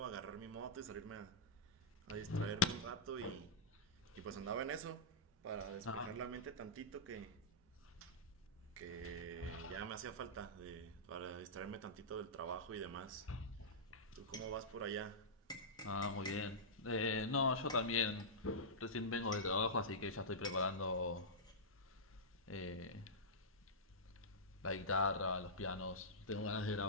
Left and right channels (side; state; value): both; normal; correlation -0.13